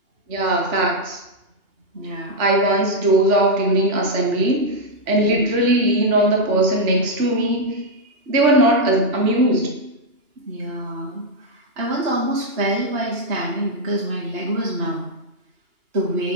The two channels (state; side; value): late; left; 2.8 ms